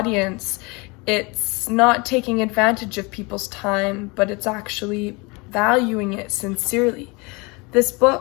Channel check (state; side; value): quieter; right; 27.5 dB